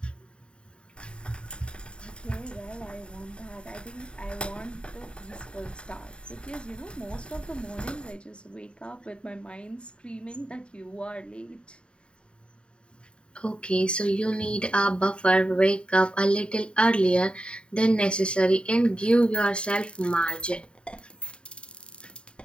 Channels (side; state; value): right; late; 0.054 ms